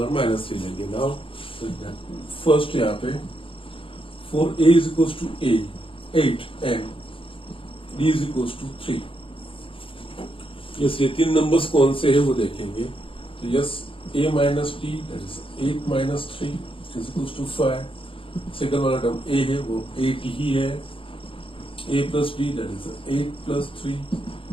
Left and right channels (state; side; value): late; right; 0.26 ms